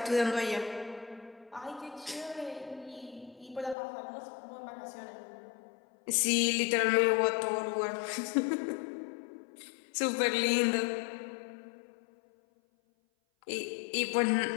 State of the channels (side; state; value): right; drops out; at 3.8 s